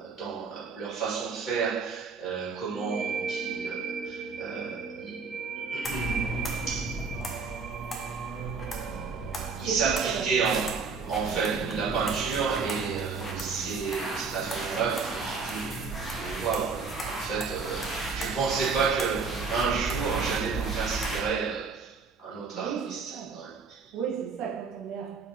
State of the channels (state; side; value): quieter; left; 4.9 dB